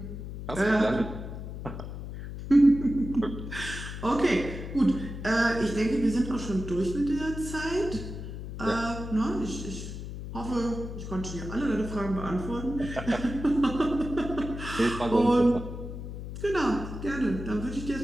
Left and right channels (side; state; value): left; noise; hum, 8 dB below the sound